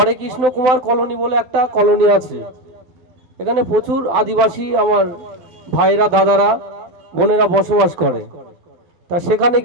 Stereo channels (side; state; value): left; late; 12 ms